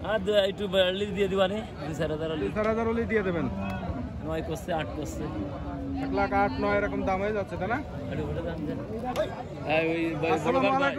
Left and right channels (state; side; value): identical; both; correlation 1.00